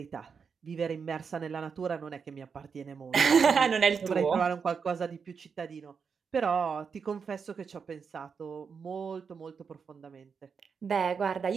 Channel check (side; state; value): left; quieter; 6.0 dB